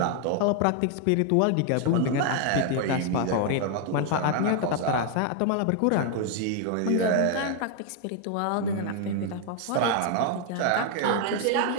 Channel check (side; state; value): both; different; correlation 0.00